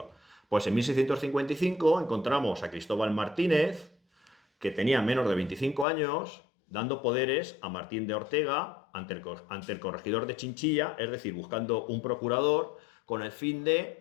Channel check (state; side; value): drops out; right; at 5.9 s